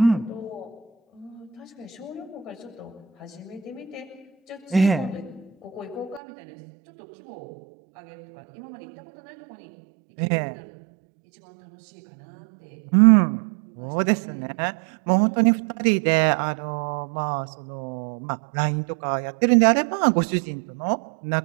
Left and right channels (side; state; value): left; drops out; at 6.2 s